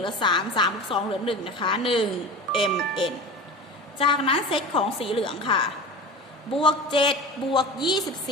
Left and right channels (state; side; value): normal; both; correlation 0.32